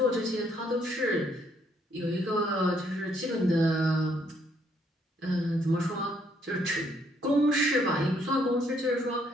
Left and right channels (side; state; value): both; normal; correlation 0.69